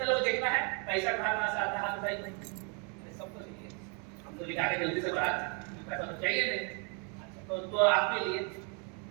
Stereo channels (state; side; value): quieter; left; 37.0 dB